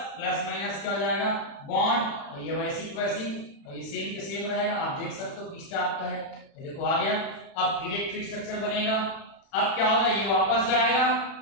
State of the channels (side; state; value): right; late; 36 ms